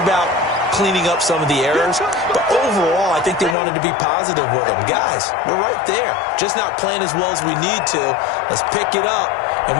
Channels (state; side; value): drops out; right; at 3.6 s